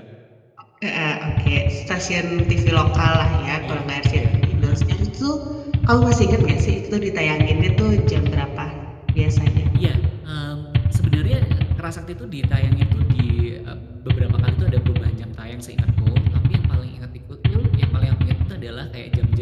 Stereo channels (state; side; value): identical; both; correlation 1.00